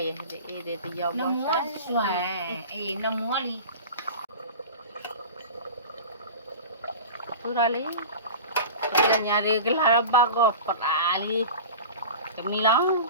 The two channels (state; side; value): inverted; both; correlation -0.33